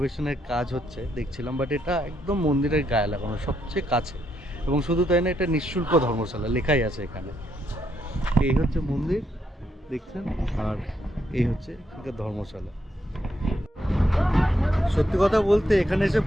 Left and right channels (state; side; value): normal; both; correlation 0.77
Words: কাজ হচ্ছে দেখছিলাম, বাট এটা একদম মন্দিরের গায়ে লাগানো, সবচেয়ে কাছে। এবং শুধু তাই না, এটা নিঃশুল্ক ধর্মশালা লেখাই আছে এখানে। এই হচ্ছে মন্দির দেখছেন, আর এই হচ্ছে এখানকার ধর্মশালা। সত্যি কথা বলতে এখানে এসে